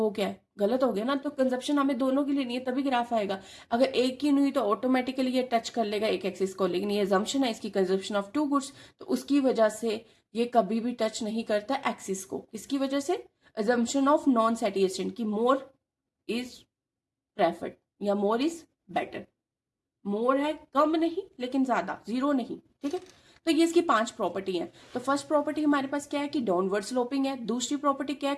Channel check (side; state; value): both; identical; correlation 1.00